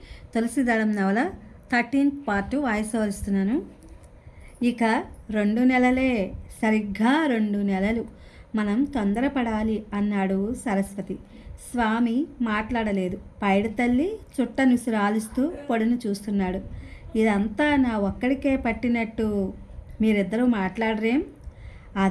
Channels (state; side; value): identical; both; correlation 1.00